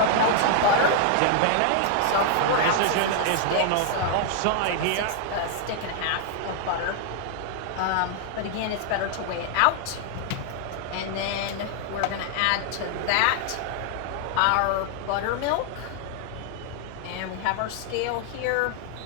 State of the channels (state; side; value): different; both; correlation 0.00